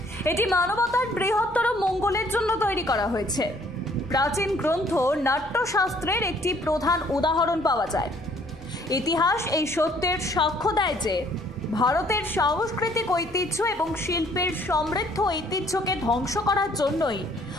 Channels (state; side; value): normal; both; correlation 0.61